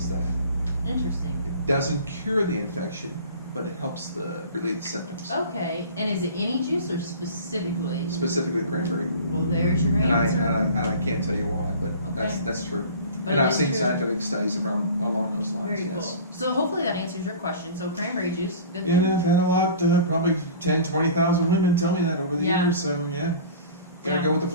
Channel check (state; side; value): inverted; both; correlation -0.41